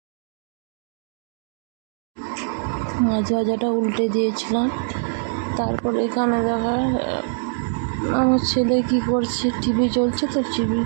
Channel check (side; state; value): left; silent; digital silence